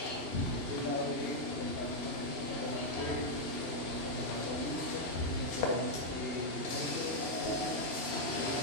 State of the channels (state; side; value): late; left; 2.8 ms